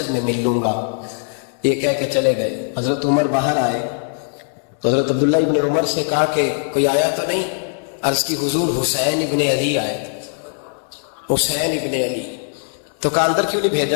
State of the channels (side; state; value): right; silent; 66 dB below the other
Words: میں مل لوں گا. یہ کہہ کے چلے گئے. حضرت عمر باہر آئے تو حضرت عبداللہ ابن عمر سے کہا کہ کوئی آیا تو نہیں؟ عرض کی حضور حسین ابن علی آئے. حسین ابن علی. تو کہا اندر کیوں نہیں